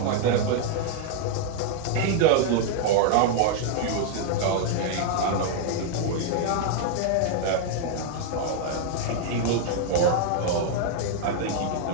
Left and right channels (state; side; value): different; both; correlation 0.00